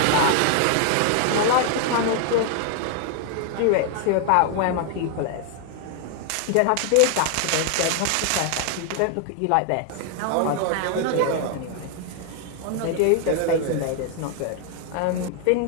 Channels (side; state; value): both; different; correlation 0.00